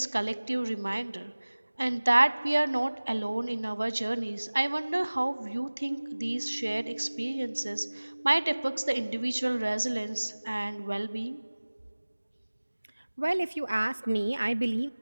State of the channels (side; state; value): both; inverted; correlation -1.00